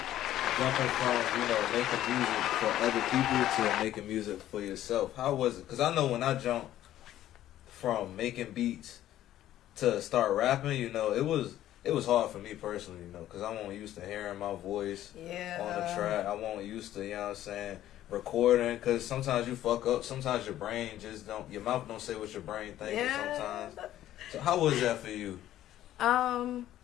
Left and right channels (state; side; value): quieter; right; 13.0 dB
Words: Jumping from, making music for other people to making music for yourself. How was it? Because I know when I jumped from making beats to start rapping, it was hard for me personally, because I wasn't used to hearing my voice on the track. I wasn't used to, recording, because sometimes you fuck up. Sometimes your brain just don't, your mouth don't say what your brain thinks sometimes. So how was that for you?